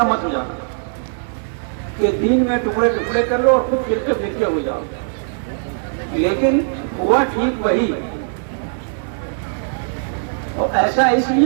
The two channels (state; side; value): silent; left; digital silence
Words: مت ہو جانا، کہ دین میں ٹکڑے ٹکڑے کر لو اور خود فرقے فرقے ہو جاؤ۔ لیکن ہوا ٹھیک وہی، اور ایسا اس